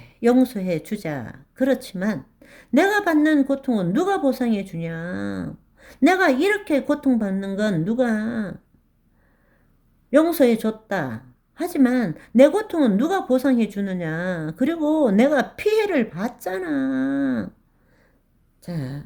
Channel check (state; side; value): identical; both; correlation 1.00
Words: 용서해 주자. 그렇지만 내가 받는 고통은 누가 보상해 주냐? 내가 이렇게 고통받는 건 누가 용서해 줬다. 하지만 내 고통은 누가 보상해 주느냐? 그리고 내가 피해를 봤잖아. 자,